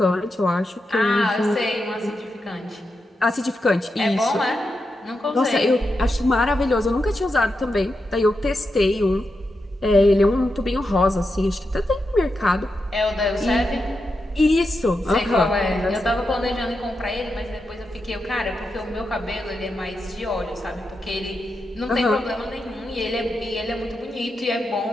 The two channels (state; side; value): normal; both; correlation 0.87